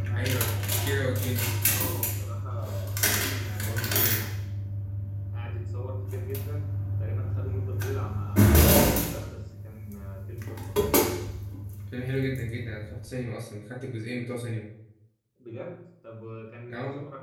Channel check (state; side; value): identical; both; correlation 1.00